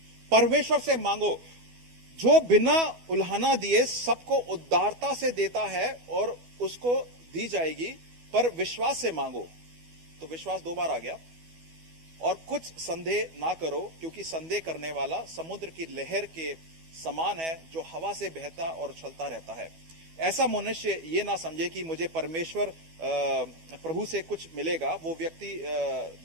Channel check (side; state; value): left; late; 12 ms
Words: परमेश्वर से मांगो, जो बिना उल्हाना दिए सबको उदारता से देता है और उसको दी जाएगी, पर विश्वास से मांगो। तो विश्वास 2 बार आ गया। और कुछ संदेह ना करो, क्योंकि संदेह करने वाला समुद्र की लहर के समान है, जो हवा से बहता और उछलता रहता है। ऐसा मनुष्य ये ना समझे कि मुझे परमेश्वर प्रभु से कुछ मिलेगा। वो व्यक्ति